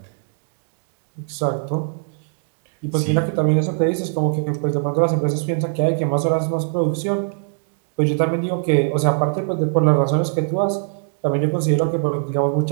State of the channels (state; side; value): silent; left; digital silence